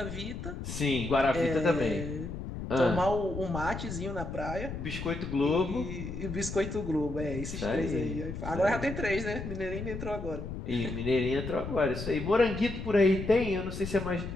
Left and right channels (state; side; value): noise; left; rumble, 7 dB below the sound